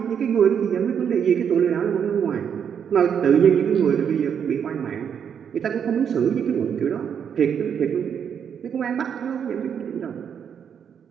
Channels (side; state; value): left; quieter; 7.8 dB